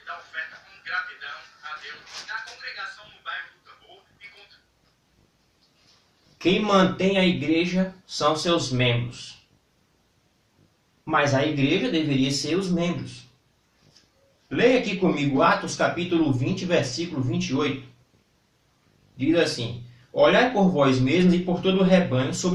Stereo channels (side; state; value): both; identical; correlation 1.00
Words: Quem mantém a igreja são seus membros. Mas a igreja deveria ser os membros. Leia aqui comigo Atos capítulo 20, versículo 28. Diz assim: olhai por vós mesmos e por todo o rebanho